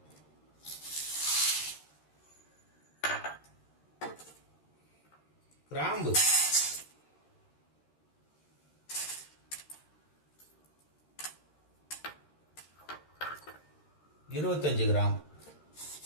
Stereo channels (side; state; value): right; late; 13 ms